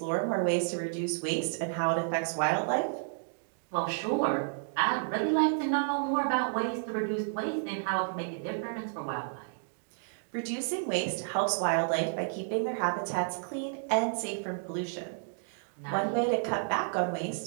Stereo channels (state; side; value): silent; left; digital silence